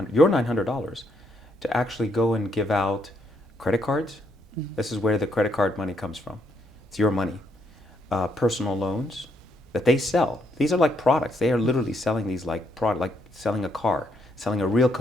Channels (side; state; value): both; normal; correlation 0.74